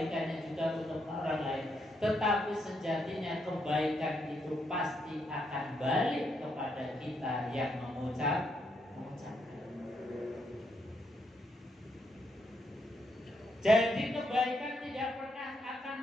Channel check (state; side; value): normal; both; correlation 0.78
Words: juga untuk orang lain, tetapi sejatinya kebaikan itu pasti akan balik kepada kita yang mengucapkan. Jadi kebaikan tidak pernah akan